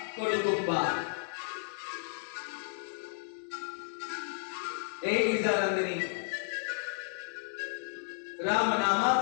कडुतुंबा. ए गिरिजा नंदिनी, राम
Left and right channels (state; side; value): silent; right; 56 dB below the other